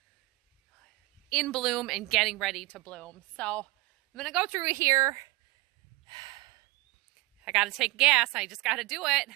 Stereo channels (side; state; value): left; quieter; 21.9 dB